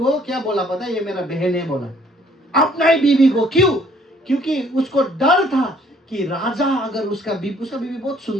क्या बोला पता है, ये मेरा बहन है बोला, अपना ही बीवी को। क्यों? क्योंकि उसको डर था कि राजा अगर उसका बीवी बहुत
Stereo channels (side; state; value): both; normal; correlation 0.61